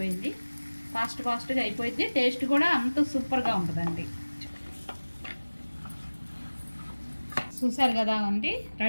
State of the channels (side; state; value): both; inverted; correlation -1.00